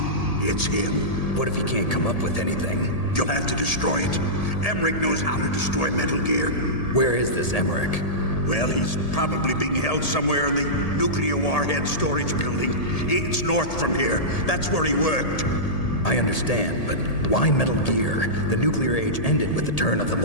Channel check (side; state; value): right; late; 1.8 ms